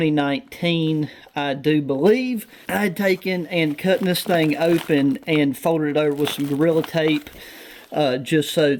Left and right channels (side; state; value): both; identical; correlation 1.00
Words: I do believe. I had taken and cut this thing open and folded it over with some Gorilla Tape, just so